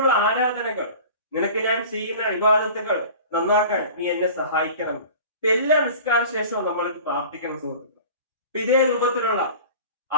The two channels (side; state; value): both; inverted; correlation -0.40